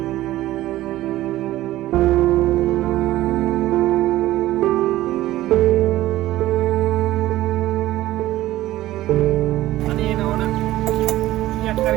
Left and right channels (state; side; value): quieter; left; 15.5 dB